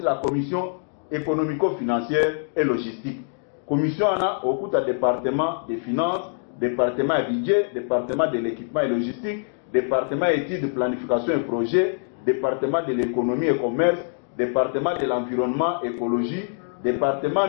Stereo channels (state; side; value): silent; right; digital silence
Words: commission économico-financière et logistique. Commission au cours du département des finances, département budget, département de l'équipement et logistique, département études, planification et projet, département de l'économie et commerce, département de l'environnement, écologie, département